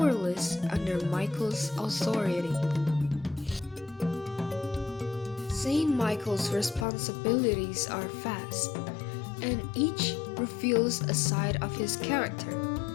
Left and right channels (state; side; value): drops out; right; at 6.9 s